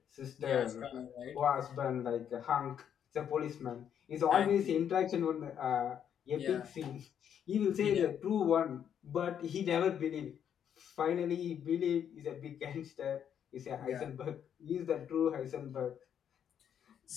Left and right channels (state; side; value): quieter; right; 8.8 dB